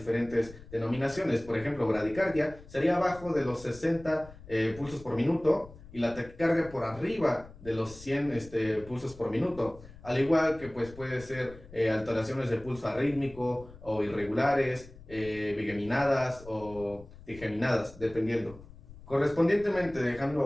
denominaciones. Por ejemplo, bradicardia sería abajo de los 60 pulsos por minuto y la taquicardia por arriba de los 100 pulsos por minuto. Al igual que pues, puede ser alteraciones de pulso arrítmico o irregulares, bigeminadas o digeminadas, dependiendo. Correspondientemente,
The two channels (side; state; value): left; noise; rumble, 19 dB below the sound